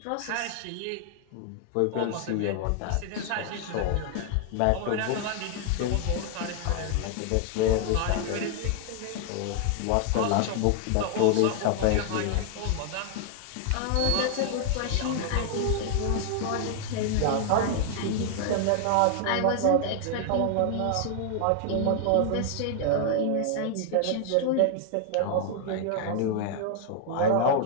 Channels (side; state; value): both; different; correlation 0.00